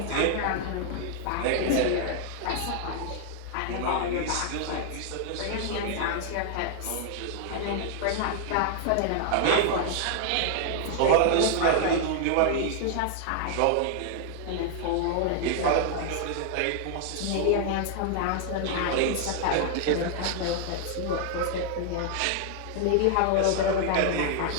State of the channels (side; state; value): both; different; correlation 0.00